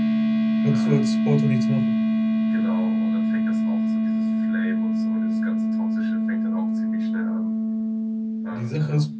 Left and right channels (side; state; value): both; identical; correlation 1.00